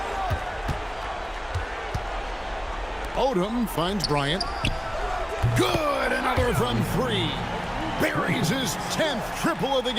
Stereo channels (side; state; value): both; identical; correlation 1.00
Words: Odom finds Bryant. Good, another from 3. buries his 10th triple of the